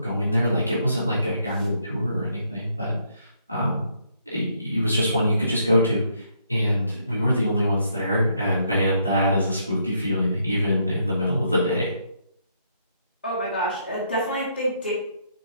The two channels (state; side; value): inverted; both; correlation -0.73